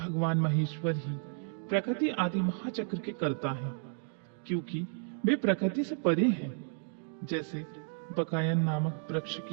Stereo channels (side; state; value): left; silent; 56 dB below the other